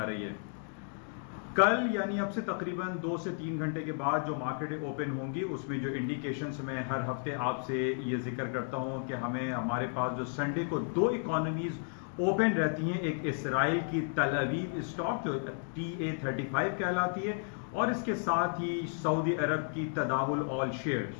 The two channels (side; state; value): right; silent; 55 dB below the other